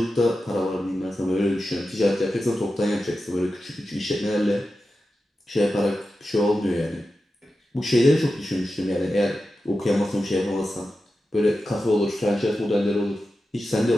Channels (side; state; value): both; normal; correlation 0.92